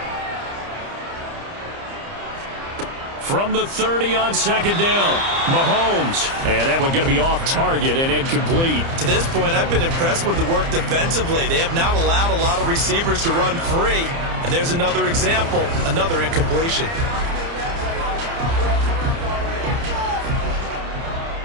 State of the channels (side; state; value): left; late; 30 ms